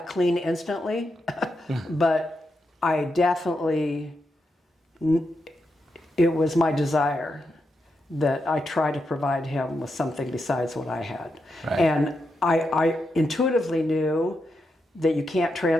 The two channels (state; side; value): normal; both; correlation 0.85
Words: clean instantly, but I definitely, it was my desire that I try to provide him with something besides what I had. Right. And I intuitively knew that you can't